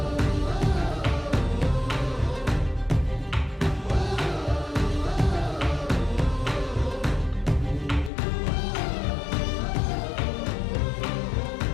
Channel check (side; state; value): right; drops out; at 8.1 s